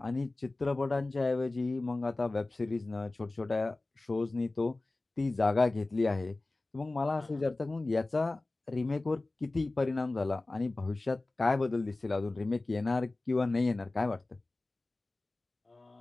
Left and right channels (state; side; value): quieter; right; 3.0 dB